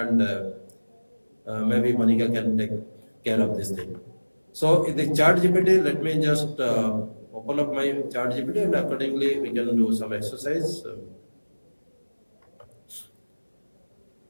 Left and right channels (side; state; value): both; inverted; correlation -1.00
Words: maybe Monica can take care of this thing. So in the ChatGPT, let me just open up my ChatGPT, and accordingly we can do some exercise.